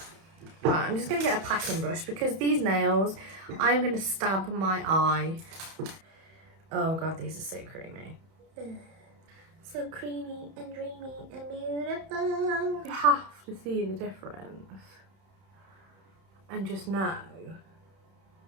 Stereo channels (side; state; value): left; late; 31 ms